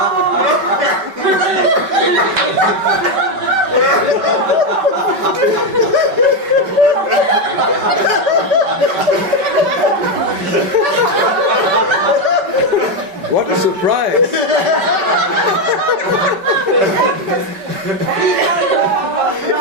What a surprise!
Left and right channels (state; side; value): late; left; 5.2 ms